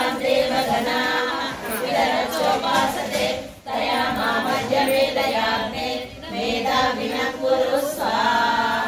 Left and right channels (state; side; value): identical; both; correlation 1.00